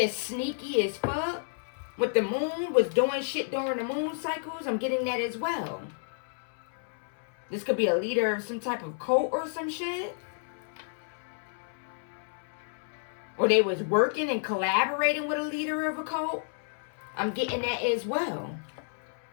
sneaky as fuck. With the moon, was doing shit during the moon cycles. I'm getting that as well. This could be a leader of some type of cult or some shit. Or they was working and collaborating with a leader of a cult. I'm getting that as well.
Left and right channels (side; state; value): right; silent; 57 dB below the other